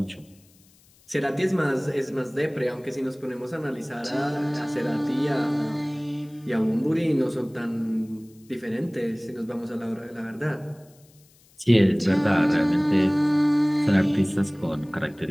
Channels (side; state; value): left; noise; hiss, 30 dB below the sound